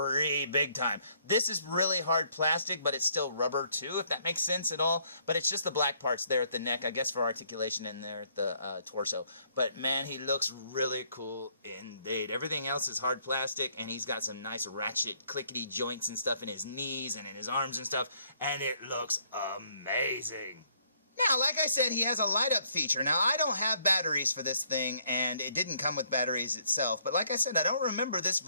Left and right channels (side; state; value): both; inverted; correlation -0.67